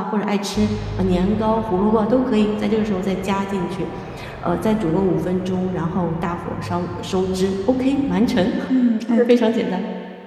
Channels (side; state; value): both; identical; correlation 1.00